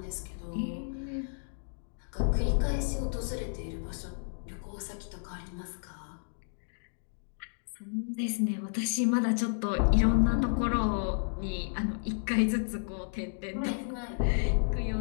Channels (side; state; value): right; silent; digital silence